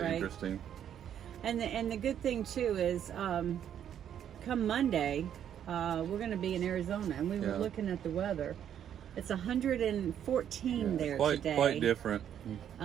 Right. interesting. And the good thing too is, come Monday, we're going to be in Arizona, and we were Yeah. looking at the weather. It's 114 there quite today. quite different.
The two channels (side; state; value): left; quieter; 9.6 dB